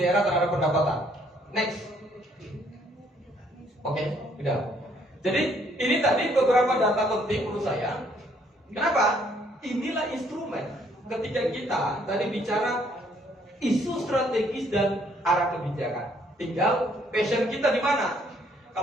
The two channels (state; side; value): normal; both; correlation 0.66